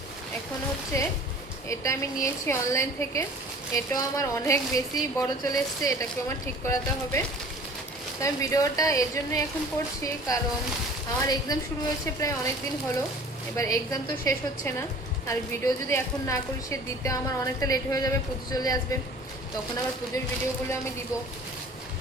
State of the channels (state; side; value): normal; both; correlation 0.46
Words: এখন হচ্ছে এটা আমি নিয়েছি অনলাইন থেকে, এটাও আমার অনেক বেশি বড় চলে এসছে, এটাকেও আমার ঠিক করাতে হবে। তো আমি ভিডিওটা এর জন্যই এখন করছি, কারণ আমার এক্সাম শুরু হয়েছে প্রায় অনেক দিন হলো, এবার এক্সাম তো শেষ হচ্ছে না, আর ভিডিও যদি এখন না করি সে দিতে আমার অনেকটা লেট হয়ে যাবে, পুজো চলে আসবে, তখন আবার পুজোর ভিডিওগুলো আমি দিব।